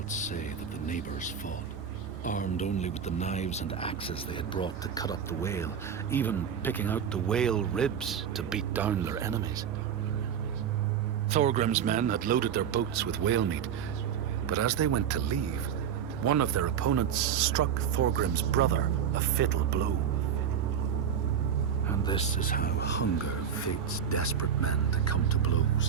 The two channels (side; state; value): left; quieter; 8.1 dB